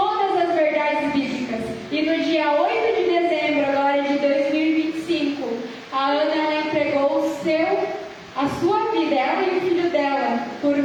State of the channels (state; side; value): identical; both; correlation 1.00